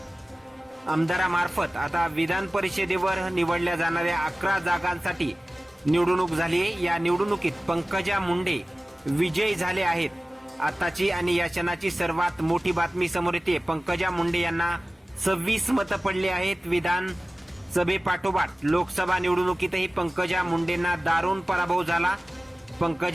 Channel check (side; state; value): both; normal; correlation 0.97